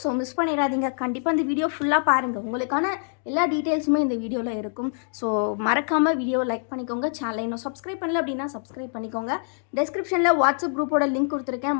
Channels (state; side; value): silent; right; 61 dB below the other